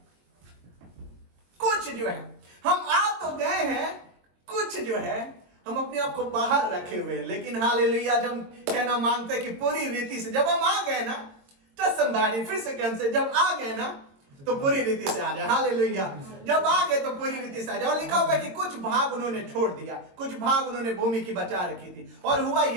हम आ तो गए हैं, कुछ जो है हम अपने आप को बाहर रखे हुए। लेकिन हालेलुया, जब कहना मांगते कि पूरी रीति से जब हम आ गए ना, तो संभाली फिर से कौन से, जब आ गए ना तो पूरी रीति से आ जाए। हालेलुया, जब आ गए तो पूरी रीति से आ जाए। और लिखा हुआ है कि कुछ भाग उन्होंने छोड़ दिया, कुछ भाग उन्होंने भूमि की बचा रखी थी। और हुआ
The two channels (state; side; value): late; left; 22 ms